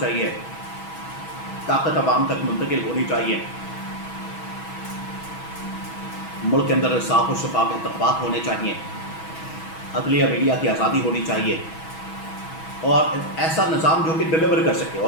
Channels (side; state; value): right; late; 6.2 ms